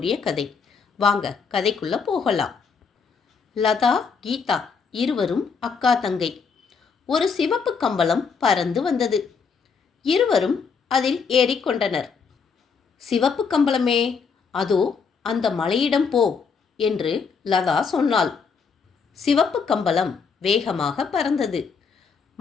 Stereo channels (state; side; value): quieter; right; 5.7 dB